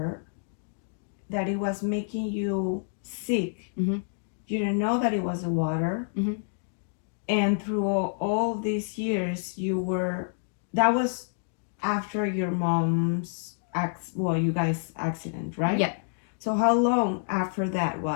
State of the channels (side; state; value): right; silent; digital silence